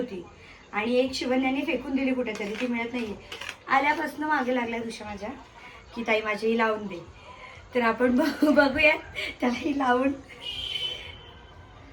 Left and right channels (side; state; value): both; identical; correlation 1.00